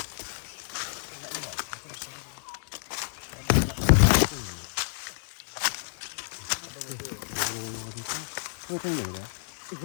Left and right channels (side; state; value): right; silent; digital silence